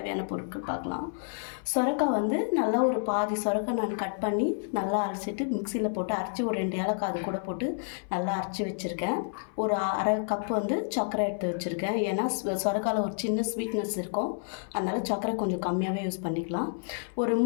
பொருட்கள் பார்க்கலாம். சொரக்காய் வந்து நல்லா ஒரு பாதி சொரக்காய் நான் கட் பண்ணி நல்லா அரைச்சிட்டு மிக்சியில் போட்டு அரைச்சி ஒரு 2 ஏலக்காய் அது கூட போட்டு நல்லா அரைச்சி வச்சுருக்கேன். ஒரு அரை கப் வந்து சர்க்கரை எடுத்து வச்சுருக்கேன். ஏன்னா சொரக்காயில் ஒரு சின்ன ஸ்வீட்னஸ் இருக்கும், அதனால் சர்க்கரை கொஞ்சம் கம்மியாகவே யூஸ் பண்ணிக்கலாம். ஒரு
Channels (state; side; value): silent; right; 56 dB below the other